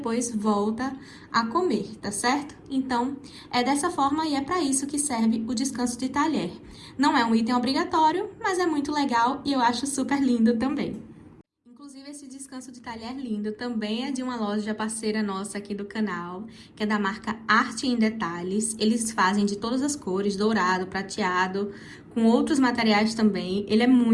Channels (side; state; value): both; identical; correlation 1.00